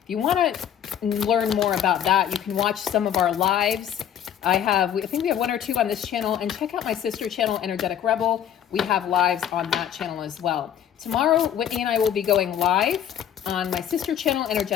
If you want to learn more about that, you can watch some of our lives. I think we have 1 or 2 on this channel, and check out my sister channel, Energetic Rebel. We have lives on that channel as well. Tomorrow, Whitney and I will be going live on my sister channel,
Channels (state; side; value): quieter; right; 9.7 dB